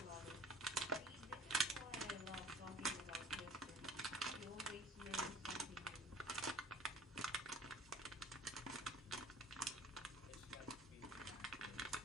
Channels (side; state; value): both; normal; correlation 0.47